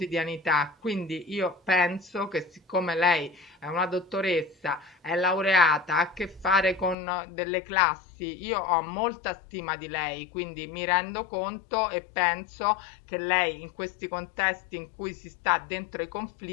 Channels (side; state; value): right; drops out; at 7.0 s